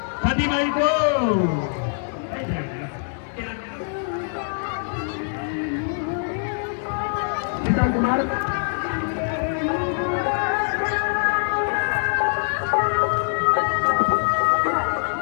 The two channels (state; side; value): silent; right; 63 dB below the other